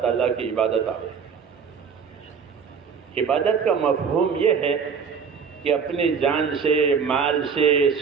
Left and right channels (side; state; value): left; quieter; 6.2 dB